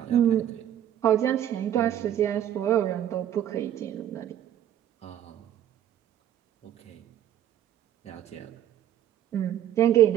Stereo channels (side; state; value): left; quieter; 11.2 dB